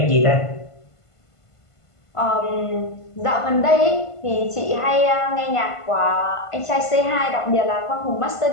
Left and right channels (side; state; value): right; late; 1.5 ms